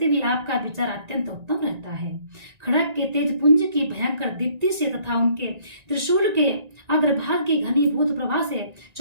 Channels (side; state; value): left; late; 1.9 ms